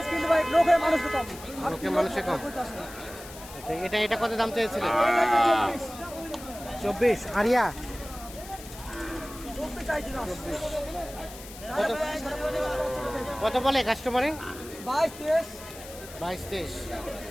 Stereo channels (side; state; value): left; noise; hiss, 16 dB below the sound